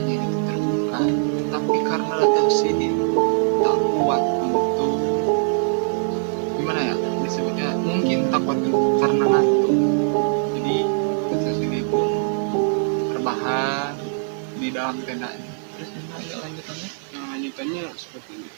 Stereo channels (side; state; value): left; silent; digital silence